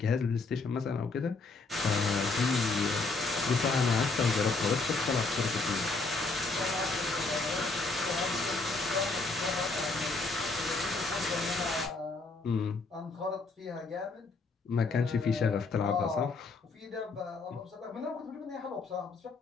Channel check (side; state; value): right; quieter; 3.8 dB